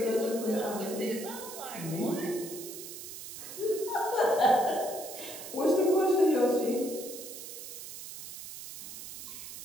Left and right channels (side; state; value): right; noise; hiss, 11 dB below the sound